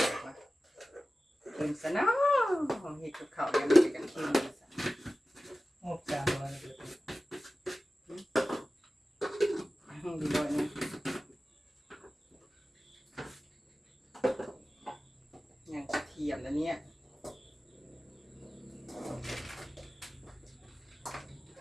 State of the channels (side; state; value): both; normal; correlation 0.96